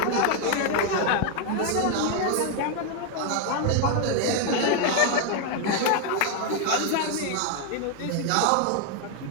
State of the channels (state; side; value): different; both; correlation 0.01